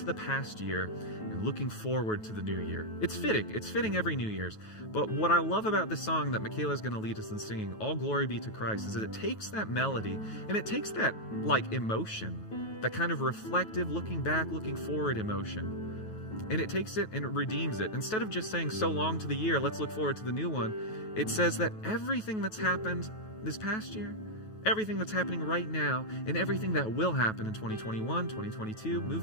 the past year and looking forward to the new year. It's fitting. It's fitting every New Year's. But what I love about this song that Michaela is going to lead us in singing, All Glory Be to Christ, is that it takes that melody and it takes that like emotion, that kind of reflective, looking back, looking forward emotion, and it takes it and it redeems it. Instead of just saying so long to the year, let's look forward to the new one, it says that everything that's happened this past year, everything that's happening right now, and everything that will happen in 2021, 2022,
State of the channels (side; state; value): right; late; 9.3 ms